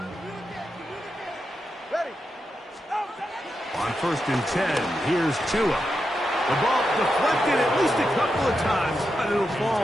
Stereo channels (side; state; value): both; normal; correlation 0.87